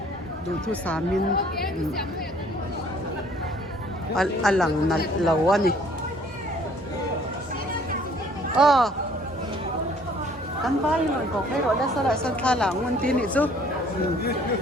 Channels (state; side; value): normal; both; correlation 0.57